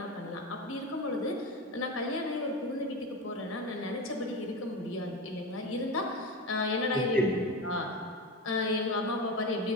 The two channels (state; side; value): normal; both; correlation 0.22